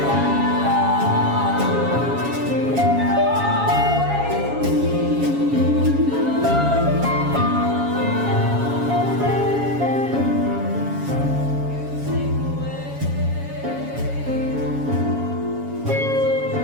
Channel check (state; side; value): late; left; 7.2 ms